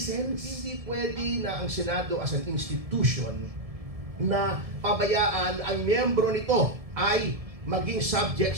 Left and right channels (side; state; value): left; late; 1.7 ms